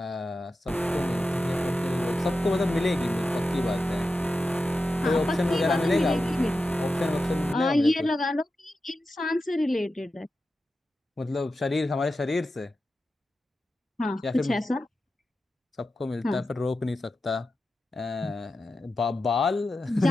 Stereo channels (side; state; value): both; normal; correlation 0.91